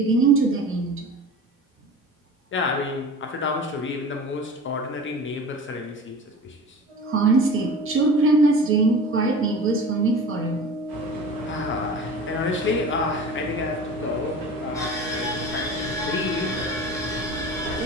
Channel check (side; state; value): both; normal; correlation 0.37